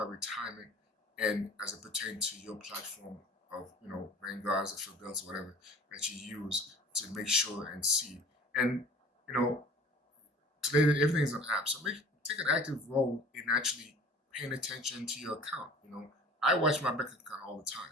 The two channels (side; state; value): both; normal; correlation 0.45